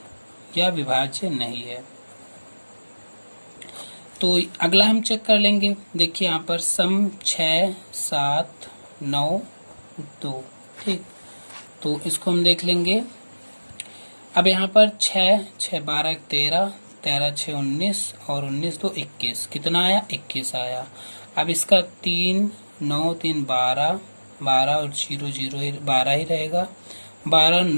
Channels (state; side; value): inverted; both; correlation -1.00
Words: या विभाज्य नहीं है। तो अगला हम चेक कर लेंगे। देखिए यहाँ पर सम 6, 7, 9, 2, ठीक, तो इसको हम देख लेंगे। अब यहाँ पर 6, 6 12 13, 13 6 19 और 19 2 21, कितना आया? 21 आया। अब इसका 3 9 3 12, 12 और 0 0 12 ही रहेगा। 12